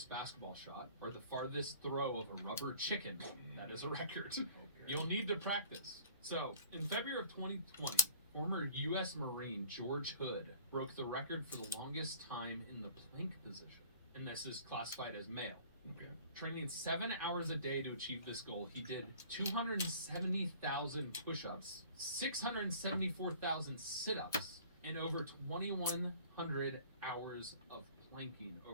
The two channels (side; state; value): both; inverted; correlation -0.49